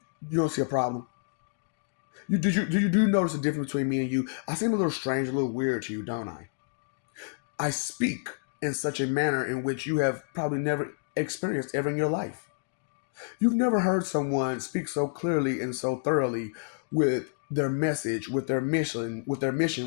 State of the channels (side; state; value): right; silent; digital silence